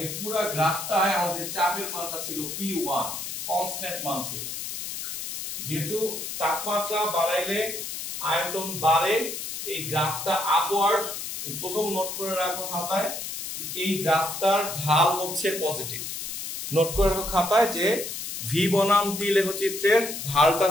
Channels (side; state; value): left; noise; hiss, 6 dB below the sound